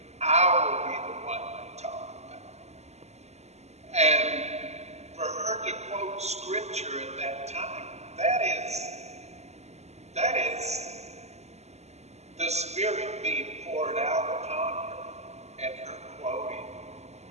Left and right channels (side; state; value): left; late; 0.32 ms